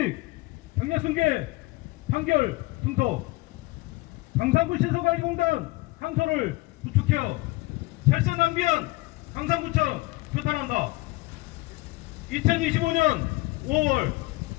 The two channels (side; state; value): right; quieter; 22.0 dB